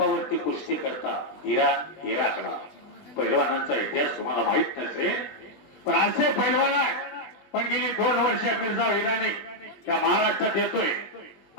कुस्ती करतात इराण इराकला. पैलवानांचा इतिहास तुम्हाला माहित नसेल पण असे पैलवान आहे. पण गेली 2 वर्ष मिर्झा इराणी त्या महाराष्ट्रात येतोय.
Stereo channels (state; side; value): late; right; 20 ms